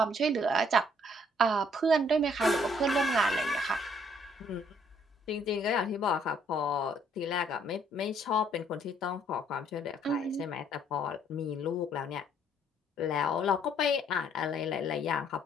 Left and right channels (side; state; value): both; normal; correlation 0.64